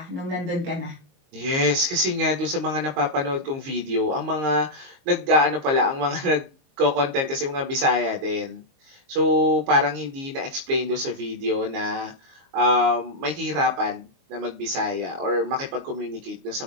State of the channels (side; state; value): left; late; 22 ms